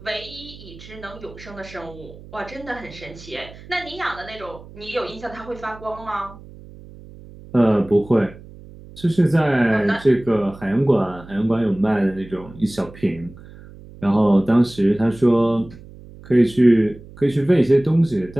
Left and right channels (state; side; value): noise; right; hum, 19 dB below the sound